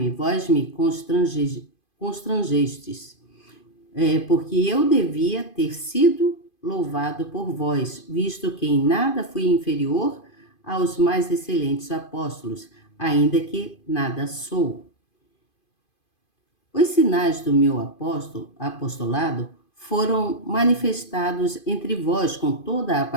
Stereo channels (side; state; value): right; late; 2.5 ms